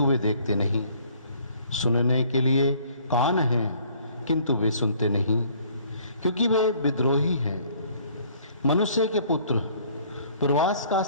वे देखते नहीं, सुनने के लिए कान हैं किंतु वे सुनते नहीं, क्योंकि वे विद्रोही हैं। मनुष्य के पुत्र, प्रवास का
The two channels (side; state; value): both; inverted; correlation -0.58